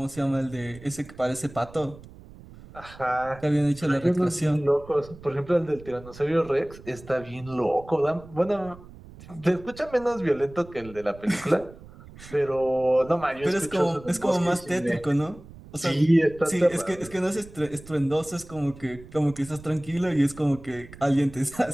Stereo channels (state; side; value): noise; right; rumble, 19 dB below the sound